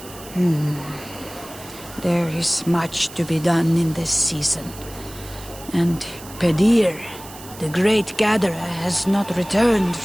There is much to be done in this season. And Pedir, the great gatherer, has not returned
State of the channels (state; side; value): noise; right; hiss, 17 dB below the sound